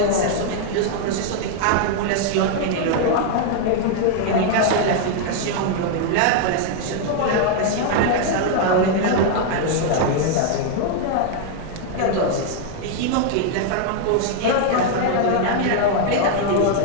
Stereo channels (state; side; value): different; both; correlation 0.00